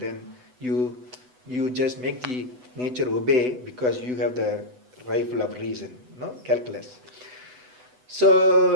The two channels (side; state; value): left; late; 8.0 ms